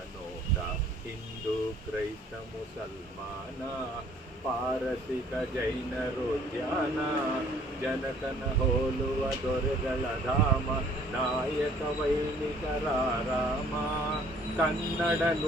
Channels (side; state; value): both; normal; correlation 0.57